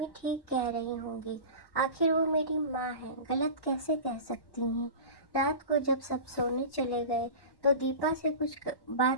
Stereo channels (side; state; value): right; late; 1.1 ms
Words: ठीक कह रही होंगी। आखिर वो मेरी माँ है, गलत कैसे कह सकती हैं। रात को जब सब सोने चले गए तो दीपा से कुछ